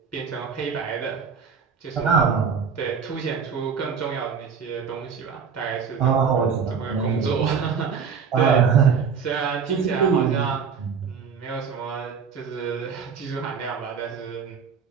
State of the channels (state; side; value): quieter; left; 6.3 dB